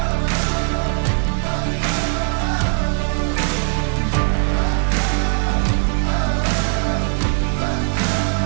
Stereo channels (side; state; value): left; silent; 61 dB below the other